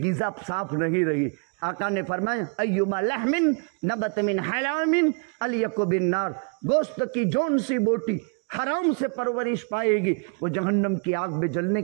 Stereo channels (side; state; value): left; quieter; 38.0 dB